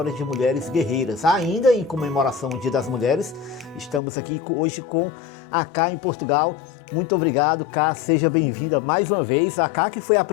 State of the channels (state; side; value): drops out; right; at 4.0 s